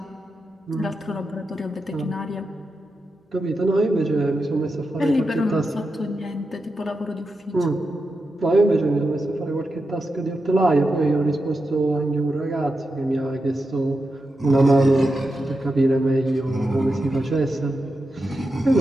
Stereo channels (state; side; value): normal; both; correlation 0.88